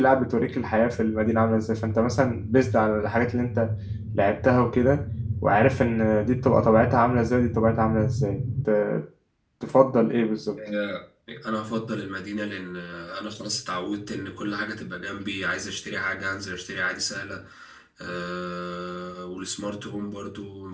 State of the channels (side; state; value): both; identical; correlation 1.00